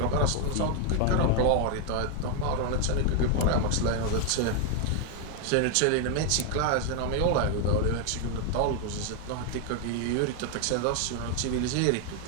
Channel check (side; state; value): both; different; correlation 0.00